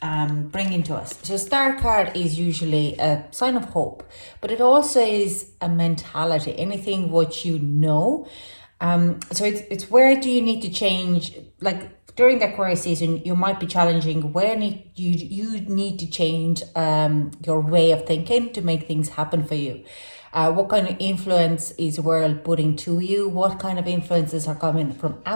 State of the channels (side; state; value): both; inverted; correlation -1.00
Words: bringing to us? So star card is usually a sign of hope, but it also is a mentality, anything what you know. So it's where do you need to change, like during the Aquarius season, you might be challenging where you need to change your way of thinking to make things happen for you. What kind of influence is the world putting to you? What kind of influences are coming from